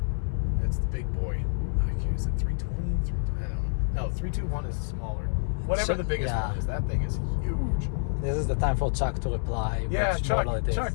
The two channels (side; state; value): right; silent; 59 dB below the other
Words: It's the big boy. Is it 320? I don't know. No, 321 is smaller. Whatever the biggest one is, that thing is huge. This is the time for Chuck to reply. Yeah, Chuck,